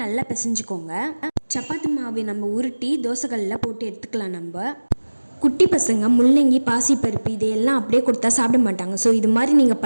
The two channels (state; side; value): inverted; both; correlation -1.00